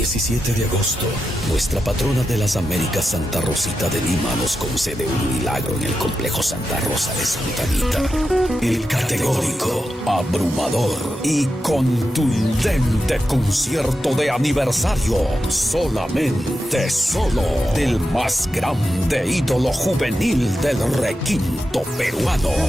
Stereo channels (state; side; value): normal; both; correlation 0.89